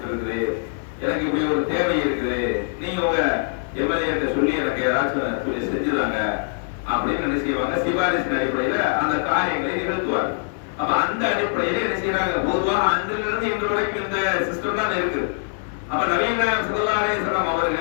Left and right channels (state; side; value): silent; right; digital silence